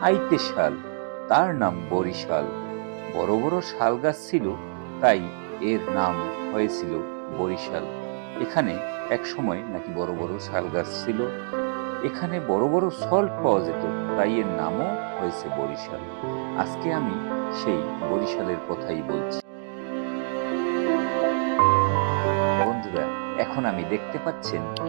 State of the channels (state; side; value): silent; left; 61 dB below the other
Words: আইতে শাল, তার নাম বরিশাল। বড় বড় শাল গাছ ছিল, তাই এর নাম হয়েছিল বরিশাল। এখানে এক সময় নাকি বড় বড় শাল গাছ ছিল। এখানে বড় বড় সল্ট পাওয়া যেত, তাই এর নামও হয়েছে বরিশাল। আজকে আমি সেই বরিশালের কথাই বলছি। বন্ধুরা, এখন আমি দেখতে পাচ্ছেন